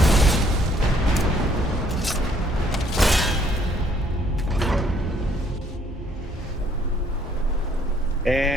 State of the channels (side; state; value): both; normal; correlation 0.64